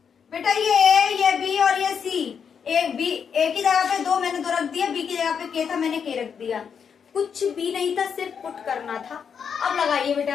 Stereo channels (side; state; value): right; quieter; 7.0 dB